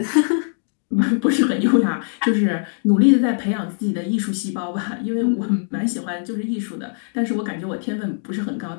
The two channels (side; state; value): right; silent; digital silence